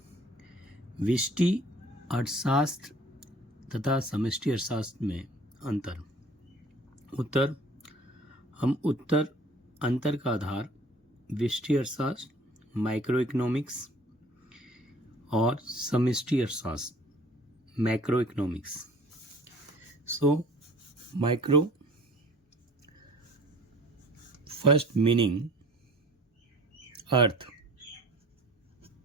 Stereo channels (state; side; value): normal; both; correlation 0.51